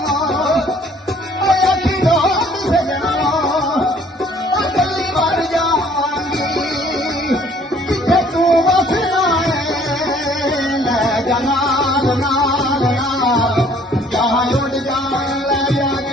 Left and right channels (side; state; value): both; normal; correlation 0.58